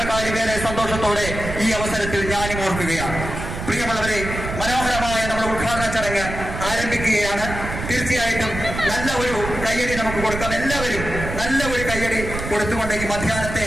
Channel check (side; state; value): right; noise; rumble, 7 dB below the sound